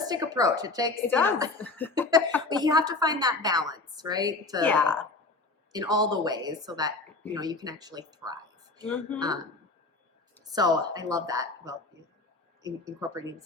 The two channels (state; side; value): quieter; right; 3.4 dB